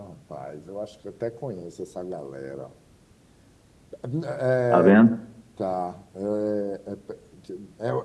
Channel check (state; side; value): identical; both; correlation 1.00